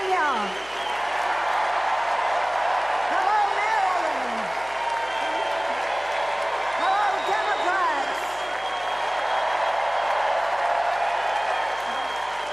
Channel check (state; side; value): noise; left; hum, 25 dB below the sound